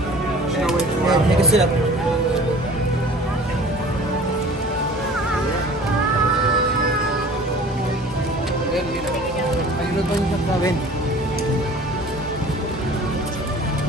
Take a sip.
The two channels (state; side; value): normal; both; correlation 0.46